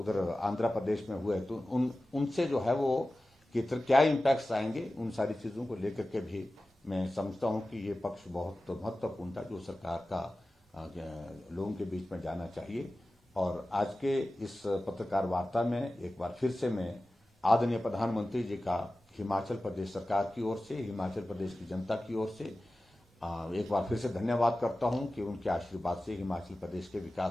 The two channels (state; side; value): normal; both; correlation 0.95